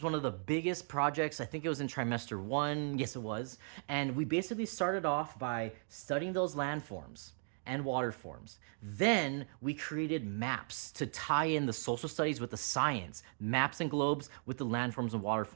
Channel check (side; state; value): left; silent; 53 dB below the other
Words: one of the biggest projects. I think it was in trimester 1. Yes, it was. And we basically started off by studying those landforms and water forms. Then we created maps to tie in the social studies with the science, maps and globes with the landforms and water